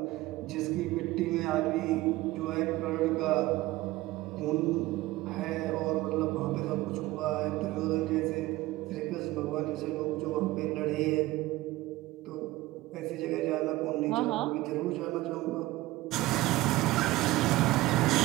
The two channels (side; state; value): left; quieter; 18.3 dB